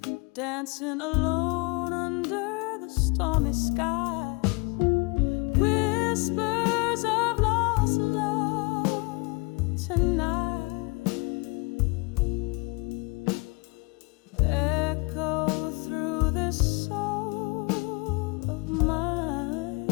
dancing alone under the stormy sky. Whispers of lost love tonight echo through this soul of mine,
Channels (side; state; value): right; quieter; 29.3 dB